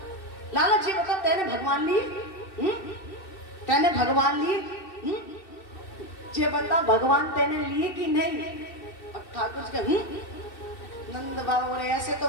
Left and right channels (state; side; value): late; right; 2.6 ms